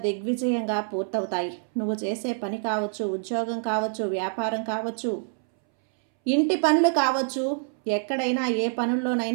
దిగ్విజయంగా పూర్తవుతాయి. నువ్వు చేసే పని కావచ్చు, ఉద్యోగం కావచ్చు, వ్యాపారం కావచ్చు, ఇంటి పనులు కావచ్చు, ఎక్కడైనా ఏ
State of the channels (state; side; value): silent; left; 61 dB below the other